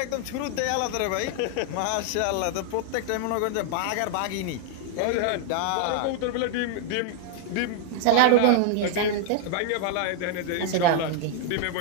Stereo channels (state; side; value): different; both; correlation 0.00